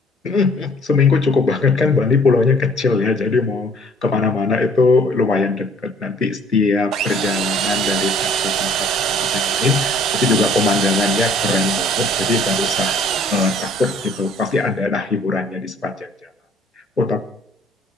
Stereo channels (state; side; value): normal; both; correlation 0.57